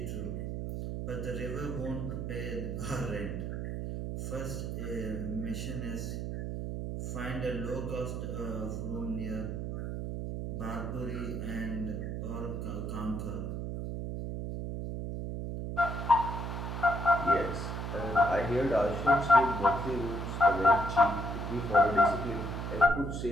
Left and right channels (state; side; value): noise; right; hum, 4 dB below the sound